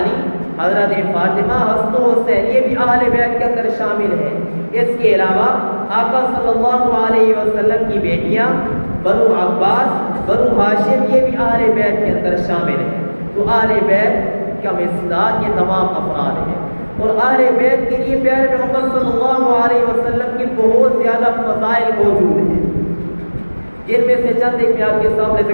حضرت فاطمہ، حسن و حسین یہ بھی اہل بیت کے اندر شامل ہیں۔ اس کے علاوہ آقا صلی اللہ علیہ وسلم کی بیٹیاں بنو عباس، بنو ہاشم یہ بھی اہل بیت کے اندر شامل ہیں۔ تو اہل بیت کا مصداق یہ تمام افراد ہیں، اور اہل بیت کے لیے پیارے پیغمبر صلی اللہ علیہ وسلم کی بہت زیادہ فضائل موجود ہیں، جن میں سے چند ایک میں آپ کے سامنے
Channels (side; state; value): both; inverted; correlation -1.00